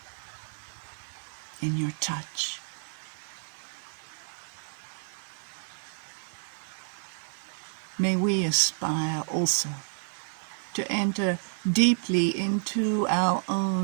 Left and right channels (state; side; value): silent; left; digital silence